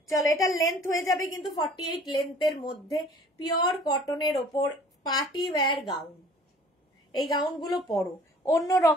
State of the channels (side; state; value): both; normal; correlation 0.51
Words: চলো এটার লেন্থ হয়ে যাবে কিন্তু 48 লেন্থের মধ্যে, পিওর কটনের ওপর পার্টি ওয়্যার গাউন। এই গাউনগুলো পরো, অন্য